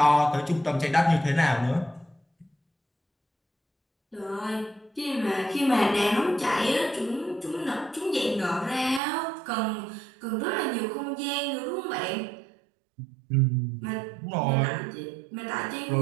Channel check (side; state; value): left; drops out; at 9.0 s